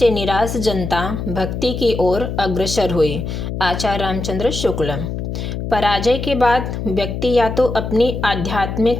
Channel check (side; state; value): left; noise; hum, 5 dB below the sound